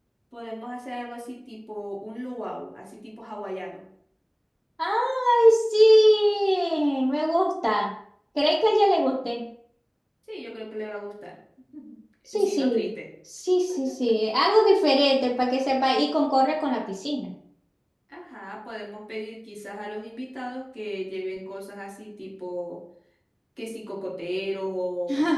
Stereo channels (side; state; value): both; identical; correlation 1.00